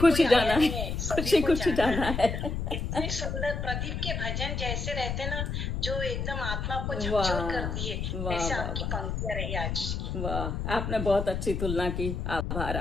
जाना है, खुशी खुशी जाना है। इतने सुंदर प्रदीप के भजन जैसे रहते ना, जो एकदम आत्मा को झकझोर कर दिए, वैसे आपकी पंक्तियां रही आज की। वाह, आपने बहुत अच्छी तुलना की, आभार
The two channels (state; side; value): noise; left; rumble, 3 dB below the sound